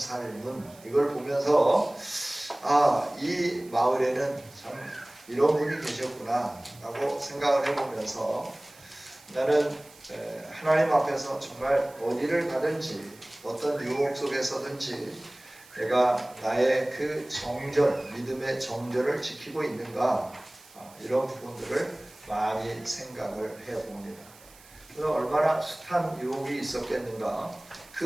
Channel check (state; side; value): noise; right; hiss, 24 dB below the sound